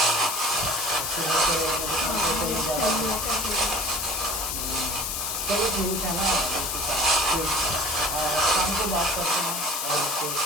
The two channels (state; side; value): noise; left; hiss, 2 dB below the sound